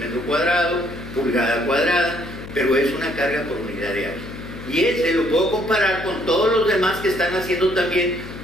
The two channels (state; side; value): noise; left; hum, 12 dB below the sound